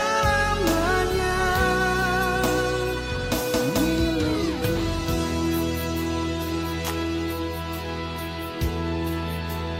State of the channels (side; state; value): both; identical; correlation 1.00